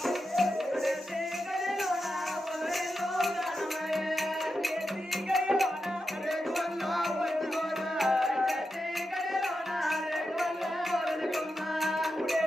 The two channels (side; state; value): both; normal; correlation 0.88